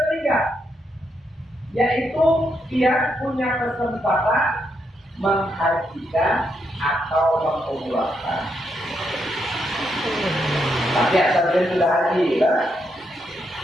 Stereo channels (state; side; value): normal; both; correlation 0.80